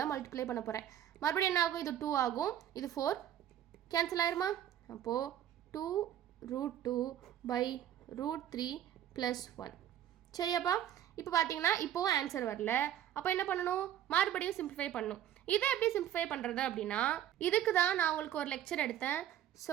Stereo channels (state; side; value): quieter; left; 11.2 dB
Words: மல்டிப்ளை பண்ண போகிறேன். மறுபடியும் என்ன ஆகும்? இது 2 ஆகும், இது 4 கேன்சல் ஆயிருமா? அப்போது 2 √2/√3 + 1. சரியாப்பா? இப்போ பார்த்தீங்கன்னா இப்போவும் ஆன்சர் வரல. அப்போ என்ன பண்ணணும்? மறுபடியும் சிம்பிளிஃபை பண்ணணும். இதை எப்படி சிம்பிளிஃபை பண்ணுறது அப்படின்னா இதுக்கு தான் நான் உங்களுக்கு ஒரு லெக்சர் எடுத்தேன்,